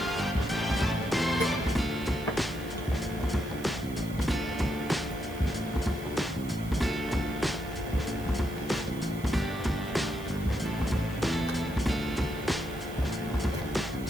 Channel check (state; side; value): noise; right; hiss, 19 dB below the sound